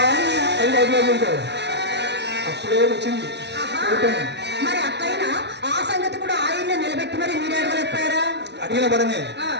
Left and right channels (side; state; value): left; late; 0.50 ms